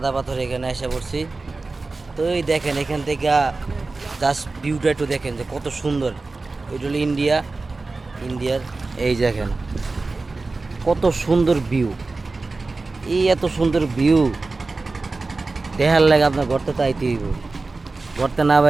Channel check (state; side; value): quieter; left; 3.6 dB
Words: পাথর এখানে এসে পড়ছি। তো এই দেখেন এখান থেকে জাস্ট ভিউটা একটু দেখেন যে কত সুন্দর। এটা হলো ইন্ডিয়ার এই দেখেন কত সুন্দর ভিউ। এই এত সুন্দর ভিউ দেখার লাগে আপনার ঘরতে তো আইতে হইব। ঘরতে না